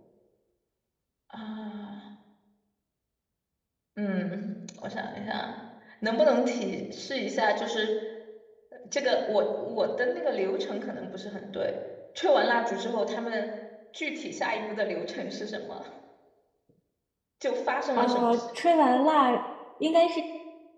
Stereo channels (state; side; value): identical; both; correlation 1.00